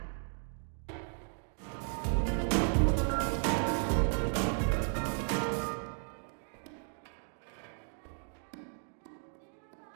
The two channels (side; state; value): left; silent; 54 dB below the other